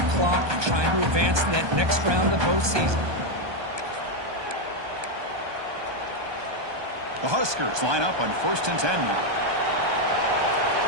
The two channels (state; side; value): late; left; 1.2 ms